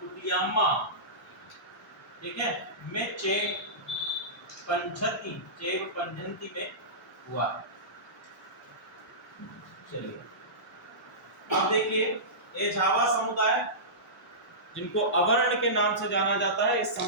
ठीक है, में चेव पंझंती में हुआ। चलिए अब देखिए, ये झावा समुदाय, जिनको अवर्ण के नाम से जाना जाता है, इस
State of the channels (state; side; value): normal; both; correlation -0.20